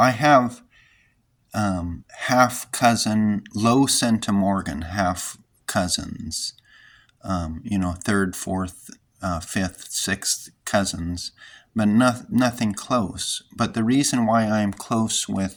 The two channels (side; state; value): both; identical; correlation 1.00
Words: have half cousin, low centimorgan, half cousins, third, fourth, fifth, sixth cousins, but nothing close. But the reason why I'm close